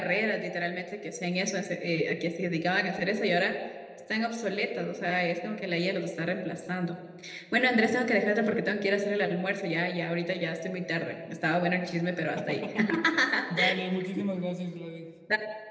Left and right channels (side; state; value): both; identical; correlation 1.00